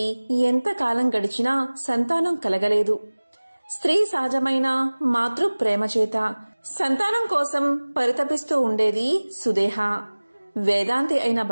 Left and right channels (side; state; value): both; inverted; correlation -1.00